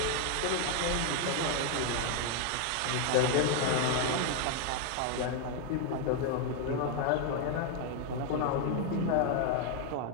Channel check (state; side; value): different; both; correlation 0.00